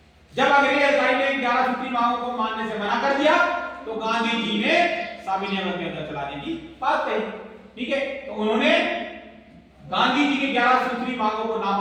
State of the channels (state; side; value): identical; both; correlation 1.00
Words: जब अंग्रेज अधिकारी ने 11 सूत्री मांगों को मानने से मना कर दिया तो गांधी जी ने सविनय अवज्ञा चलाने की बात कही। ठीक है, तो उन्होंने गांधी जी की 11 सूत्री मांगों को ना